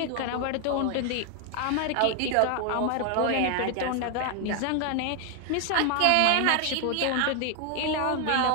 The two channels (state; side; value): different; both; correlation 0.00